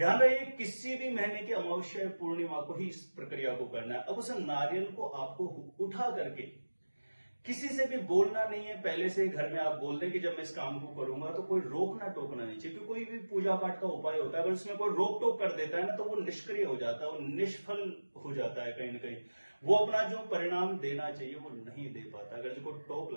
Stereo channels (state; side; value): inverted; both; correlation -1.00